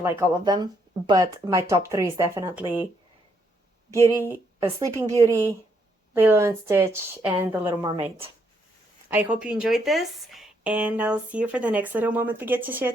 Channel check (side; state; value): both; normal; correlation 0.73